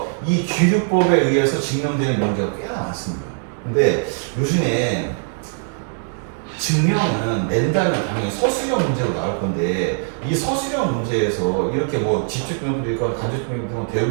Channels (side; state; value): left; silent; digital silence